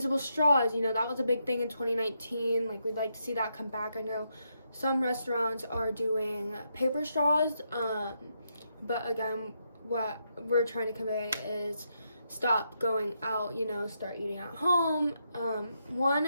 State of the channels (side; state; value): both; inverted; correlation -0.80